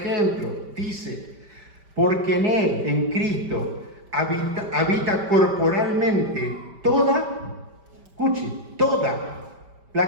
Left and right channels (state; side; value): late; left; 5.1 ms